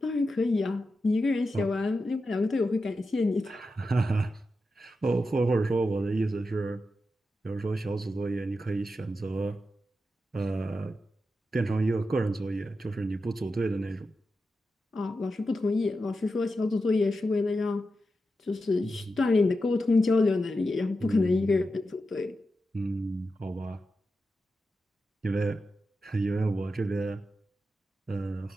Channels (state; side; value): normal; both; correlation 0.89